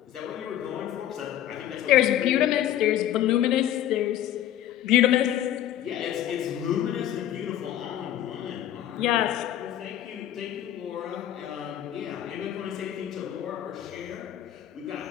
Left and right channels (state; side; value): quieter; right; 11.8 dB